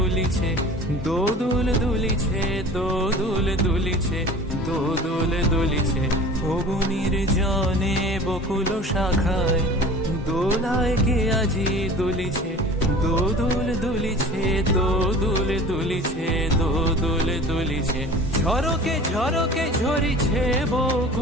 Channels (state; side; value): normal; both; correlation 0.41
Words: দোদুল দুলিছে, দোদুল দুলিছে, দোদুল দুলিছে। ওগো নির্জনে বকুল শাখায় দোলায় কে আজি দুলিছে, দোদুল দুলিছে, দোদুল দুলিছে, দোদুল দুলিছে। ঝরকে ঝরকে ঝরিছে